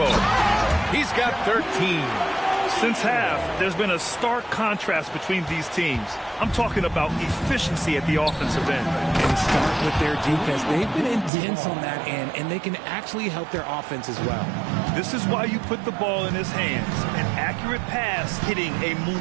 He's got 13. Since half, there's been a stark contrast between these teams. I'm talking about efficiency at the offensive end. And start with their defense. They've been intense on that end, and they can actually help their offense as well. This is why you put the ball in his hands. An accurate pass hitting a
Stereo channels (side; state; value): left; drops out; at 11.3 s